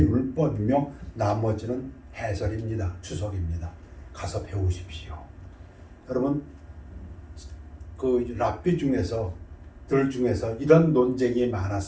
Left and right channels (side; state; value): both; identical; correlation 1.00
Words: 나머지는 해설입니다. 추석입니다. 가서 배우십시오. 여러분 그 랍비 중에서 이런 논쟁이